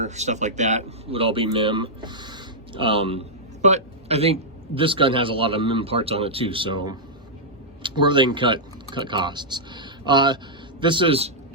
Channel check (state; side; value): normal; both; correlation -0.09